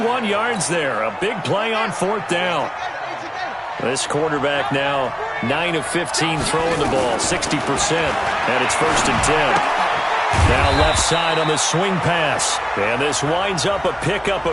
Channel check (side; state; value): both; identical; correlation 1.00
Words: yards there. A big play on 4th down. This quarterback now 9 of 15 throwing the ball, 60%, and it's 1st and 10. Now left side on the swing pass. And this winds up a pickup